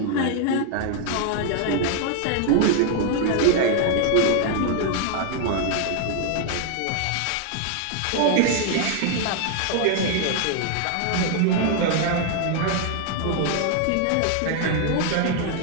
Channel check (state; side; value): different; both; correlation 0.00